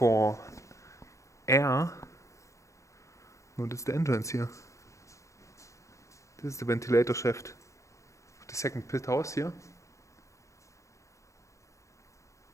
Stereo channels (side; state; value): right; late; 0.15 ms